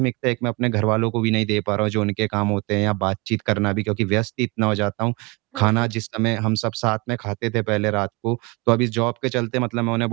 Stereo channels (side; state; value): left; quieter; 26.1 dB